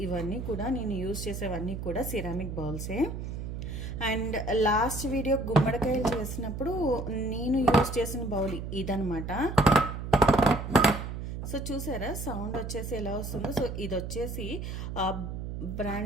ఇవన్నీ కూడా నేను యూజ్ చేసేవన్నీ కూడా సిరామిక్ బౌల్సే. అండ్ లాస్ట్ వీడియో గుమ్మడికాయలు చేసినప్పుడు నేను యూజ్ చేసిన బౌల్ ఇదనమాట. సో చూసారా సౌండ్ వచ్చేసి ఎలా వస్తుందో. సో ఇది వచ్చేసి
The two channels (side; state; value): right; noise; hum, 6 dB below the sound